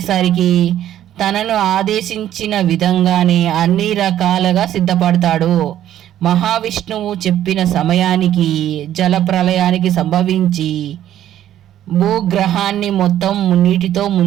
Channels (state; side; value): quieter; left; 11.8 dB